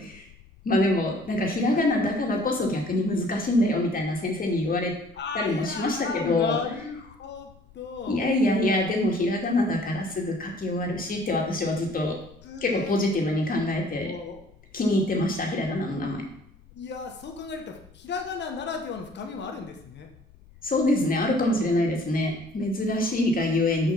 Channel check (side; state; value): left; noise; rumble, 25 dB below the sound